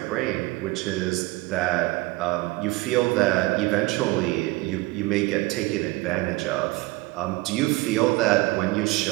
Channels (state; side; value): quieter; left; 22.0 dB